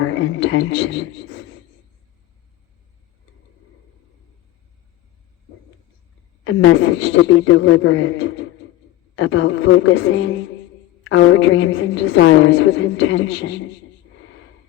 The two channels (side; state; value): right; quieter; 15.3 dB